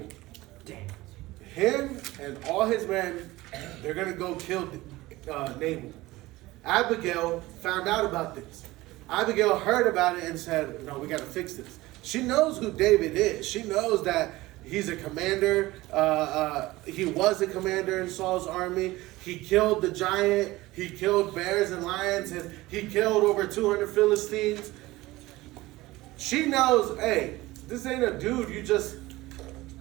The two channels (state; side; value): quieter; left; 18.9 dB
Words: Him and all his men, they're going to go kill Nabal. Abigail found out about this. Abigail heard about it and said, no, we got to fix this. She knows who David is. She knows that he's a commander. He was a commander in Saul's army. He killed the giant. He killed bears and lions. And he killed over 200 Philistines. She knows, hey, this ain't a dude you just